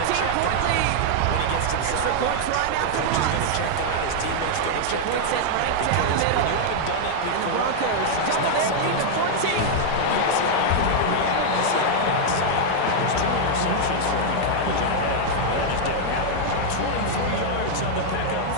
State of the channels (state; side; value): different; both; correlation -0.01